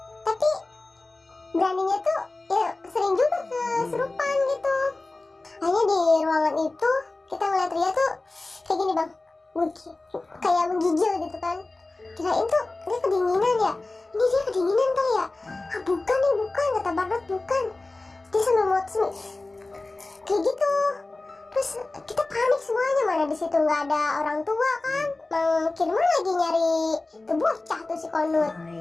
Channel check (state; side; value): quieter; right; 3.1 dB